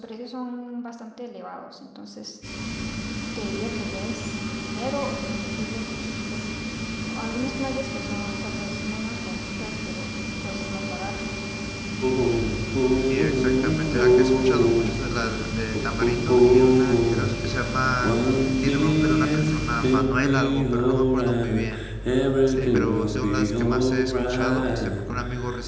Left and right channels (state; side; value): identical; both; correlation 1.00